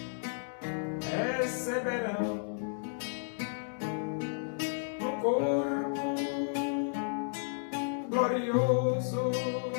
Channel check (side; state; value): right; silent; digital silence